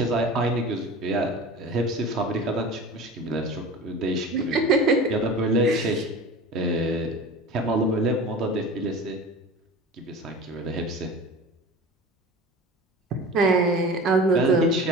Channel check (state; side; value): normal; both; correlation 0.36